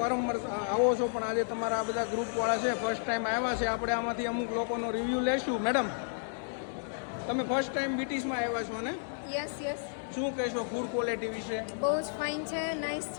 આવો છો, પણ આજે તમારા આ બધા ગ્રુપવાળા છે, ફર્સ્ટ ટાઈમ આવ્યા છે. આપણે આમાંથી અમુક લોકોનો રિવ્યૂ લેશું. મેડમ, તમે ફર્સ્ટ ટાઈમ બીટીસમાં આવ્યા છો ને? યસ. શું કહેશો ફૂડ ક્વોલિટી વિશે? બહુ જ ફાઇન છે, નાઇસ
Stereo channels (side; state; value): right; silent; digital silence